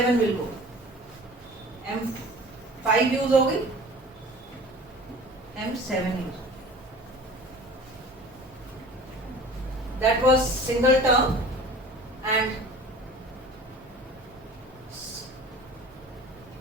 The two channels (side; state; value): both; normal; correlation 0.43